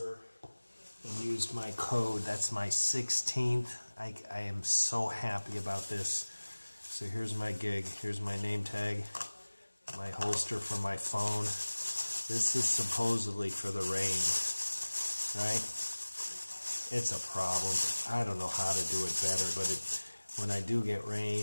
and used my code. That's my 16th. I am so happy about this. So here's my gig. Here's my name tag, my holster for my phone. This is supposedly for the rain, right? It's a problem. I don't know how to do it better, but when I do get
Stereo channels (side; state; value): both; inverted; correlation -1.00